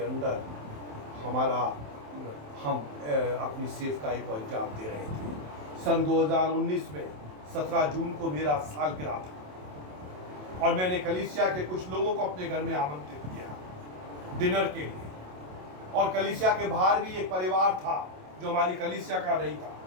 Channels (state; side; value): late; left; 27 ms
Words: अंदर हम अपनी सेवकाई को अंजाम दे रहे थे। सन 2019 में 17 जून को मेरा सालगिरह था और मैंने कलीसिया के कुछ लोगों को अपने घर में आमंत्रित किया डिनर के लिए। और कलीसिया के बाहर भी एक परिवार था जो हमारी कलीसिया का नहीं था,